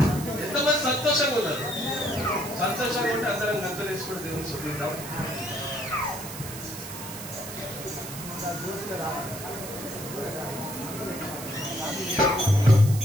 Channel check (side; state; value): right; noise; hiss, 11 dB below the sound